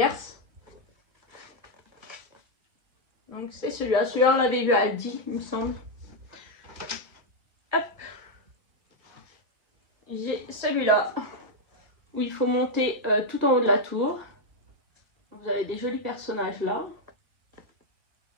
Donc c'est celui-là, on l'avait vu à Aldi, il me semble. Hop. J'ai celui-là où il faut monter tout en haut de la tour. Vous avez des jolis personnages là.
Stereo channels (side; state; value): left; late; 1.6 ms